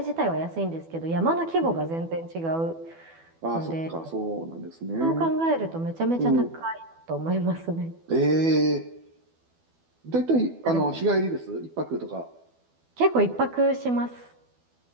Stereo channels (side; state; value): left; late; 12 ms